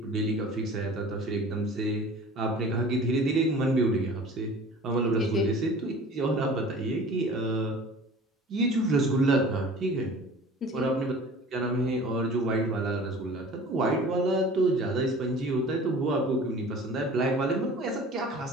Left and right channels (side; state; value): both; normal; correlation 0.44